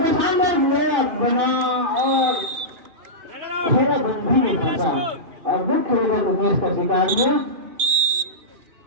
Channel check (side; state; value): left; late; 2.5 ms